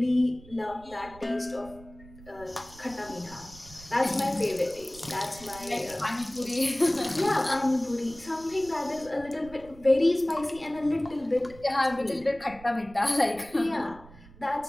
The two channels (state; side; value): noise; right; rumble, 20 dB below the sound